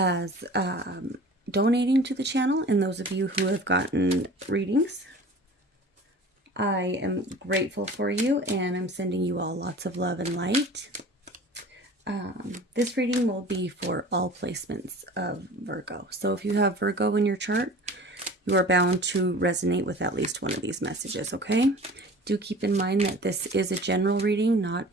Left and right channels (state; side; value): normal; both; correlation 0.42